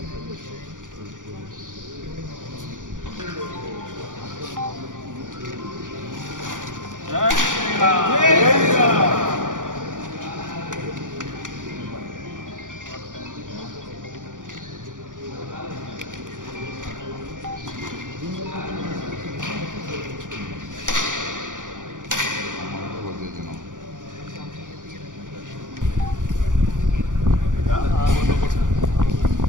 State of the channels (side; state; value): left; late; 0.88 ms